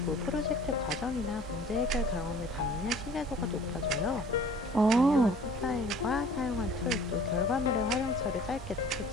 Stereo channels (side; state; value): both; normal; correlation 0.50